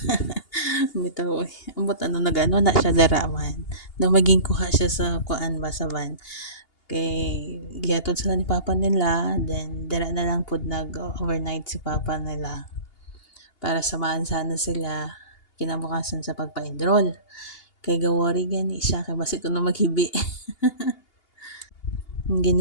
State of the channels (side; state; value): right; late; 2.8 ms